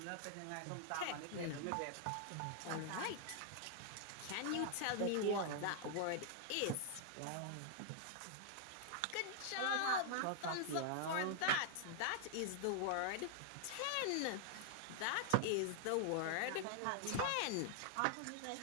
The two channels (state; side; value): different; both; correlation -0.01